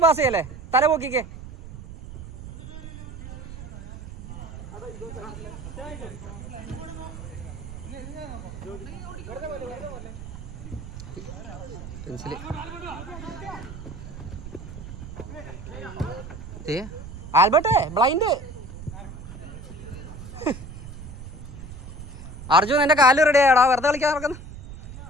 പാസ് ചെയ്യല്ലേ, തല പോക്കിക്കേ. പെൻസില് ആൽബർട്ടെ ബ്ലൈൻഡ്. അർജുൻ എന്റെ കാല് റെഡി ആയടാ, വെറുതെ കളിക്കാൻ നടക്കുന്നു.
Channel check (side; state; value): right; noise; rumble, 12 dB below the sound